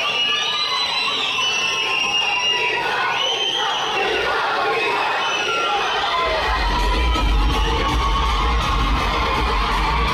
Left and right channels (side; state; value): both; identical; correlation 1.00